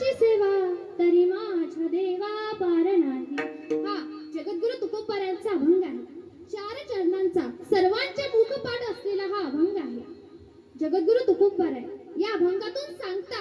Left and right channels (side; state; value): both; identical; correlation 1.00